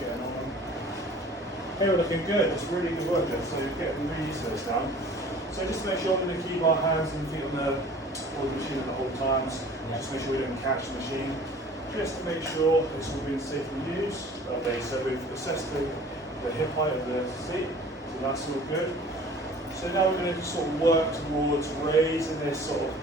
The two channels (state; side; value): normal; both; correlation 0.47